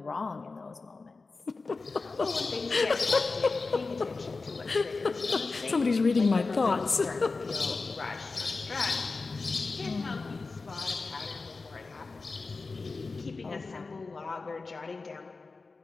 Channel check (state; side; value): quieter; right; 4.0 dB